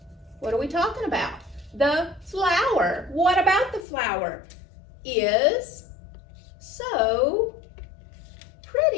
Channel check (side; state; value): right; drops out; at 3.9 s